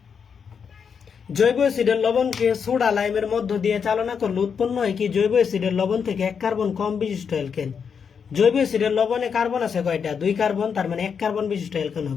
জৈব অ্যাসিডের লবণকে সোডা লাইমের মধ্য দিয়ে চালনা করলে উৎপন্ন হয় কি? জৈব অ্যাসিডের লবণ থেকে 1 কার্বন কম বিশিষ্ট অ্যালকেন। জৈব অ্যাসিডের লবণে কার্বন আছে কয়টা? 2 কার্বন, তার মানে 1 কার্বন বিশিষ্ট অ্যালকেন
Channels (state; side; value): quieter; right; 6.6 dB